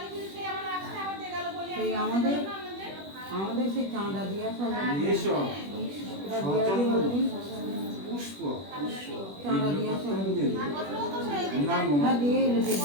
সেই আমাদের সেই চাঁদা দিয়া সব এসব সচন্দন পুষ্প চাঁদা দিয়া সব নাম হ্যাঁ দিয়েই দেবে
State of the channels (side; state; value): left; late; 21 ms